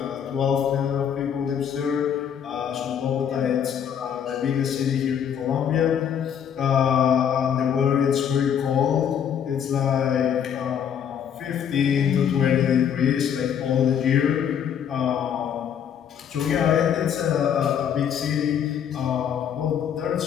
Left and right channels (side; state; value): right; quieter; 8.5 dB